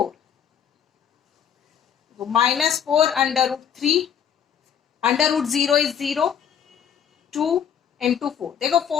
minus 4 under root 3, under root 0 is 0, 2 into 4। देखो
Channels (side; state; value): right; quieter; 8.3 dB